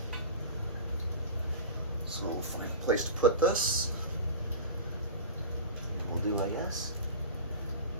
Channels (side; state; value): both; inverted; correlation -0.31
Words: So we'll find a place to put this. We'll do, I guess.